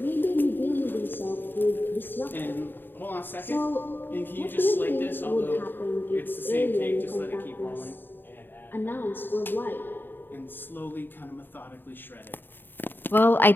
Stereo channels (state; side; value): late; right; 0.095 ms